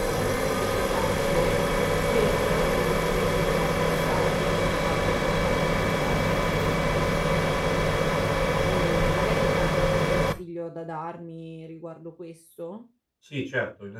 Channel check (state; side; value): identical; both; correlation 1.00